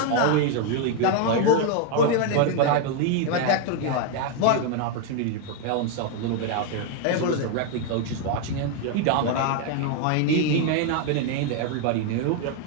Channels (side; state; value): both; different; correlation 0.01